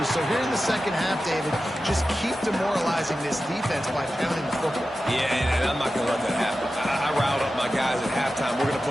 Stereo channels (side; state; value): both; normal; correlation 0.93